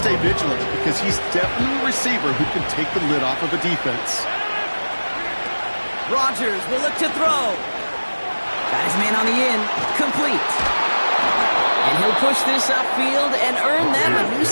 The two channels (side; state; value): both; inverted; correlation -1.00